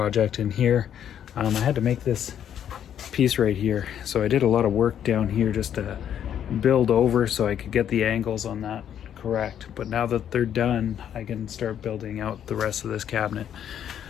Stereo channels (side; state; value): right; quieter; 9.6 dB